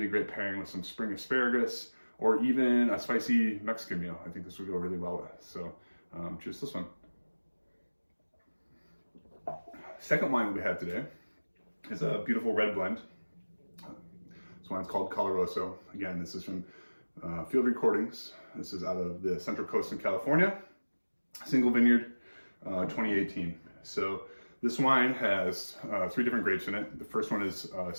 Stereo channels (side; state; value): both; inverted; correlation -1.00